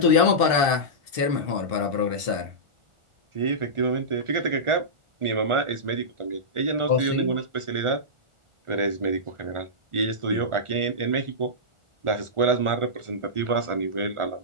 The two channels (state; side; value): late; left; 1.4 ms